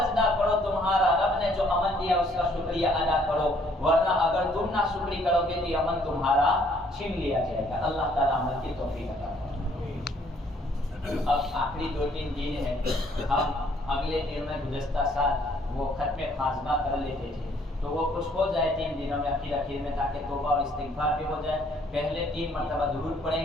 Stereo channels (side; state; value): both; normal; correlation 0.63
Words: کرو، تمہارا رب نے جو امن دیا اس کا شکریہ ادا کرو، ورنہ اگر تم نہ شکری کرو گے تو یہ امن تمہارا چھین لیا جائے گا. اللہ تعالیٰ عمل کی توفیق عطا فرمائے. اب آخری 2-3 دن ہیں. ہم اگلے دن میں گزشتہ سال وہ ختم خاتمہ کر لیتے تھے تو وہ کچھ ہو جائے 3 دنوں میں اخیر میں تاکہ توبہ اور استغفار بھی ہو جائے. پہلے 3 مرتبہ درود